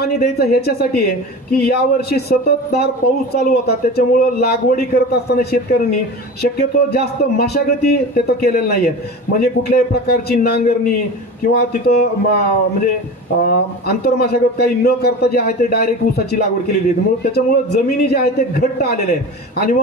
द्यायचं ह्याच्यासाठी आहे की यावर्षी सततधार पाऊस चालू होता, त्याच्यामुळं लागवडी करत असताना शेतकऱ्यांनी शक्यतो जास्त मशागती तिथं केलेल्या नाही आहेत. म्हणजे कुठल्याही प्रकारची नांगरणी किंवा तिथं म्हणजे आंतरमशागत काही न करता जे आहे ते डायरेक्ट ऊसाची लागवड केलेली आहे. म्हणून त्याच्यामुळं जमिनी जे आहे ते घट्ट आलेले आहेत आणि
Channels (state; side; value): normal; both; correlation 0.31